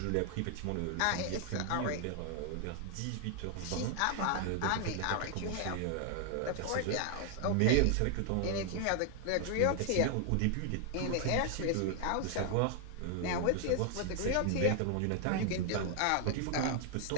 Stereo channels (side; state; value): both; different; correlation 0.00